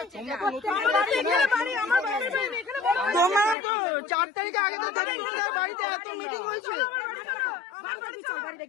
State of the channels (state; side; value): drops out; right; at 3.6 s